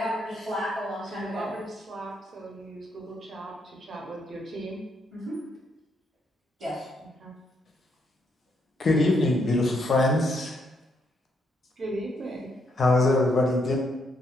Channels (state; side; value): normal; both; correlation 0.76